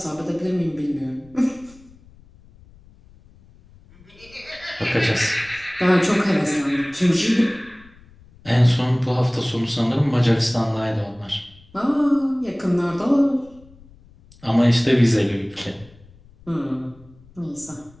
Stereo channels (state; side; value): noise; left; rumble, 26 dB below the sound